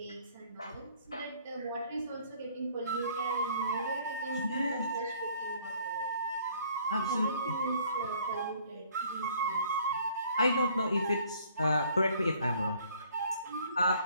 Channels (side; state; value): both; inverted; correlation -0.59